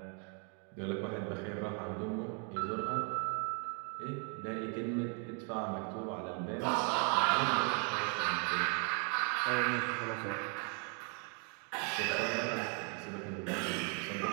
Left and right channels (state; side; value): quieter; left; 36.3 dB